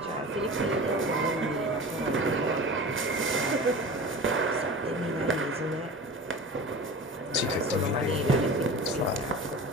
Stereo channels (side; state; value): both; normal; correlation 0.35